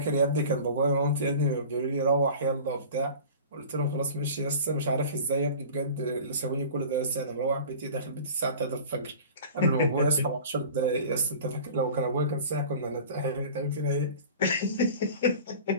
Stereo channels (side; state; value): both; inverted; correlation -0.40